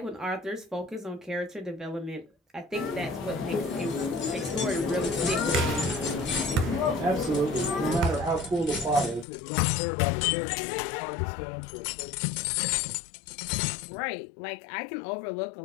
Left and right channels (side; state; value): right; drops out; at 9.2 s